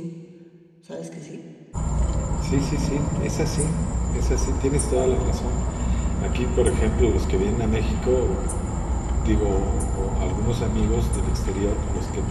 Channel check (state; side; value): identical; both; correlation 1.00